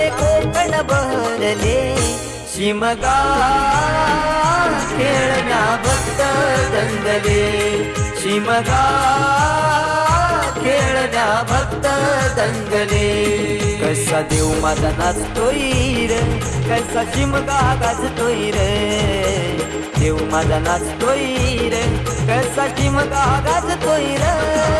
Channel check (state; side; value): identical; both; correlation 1.00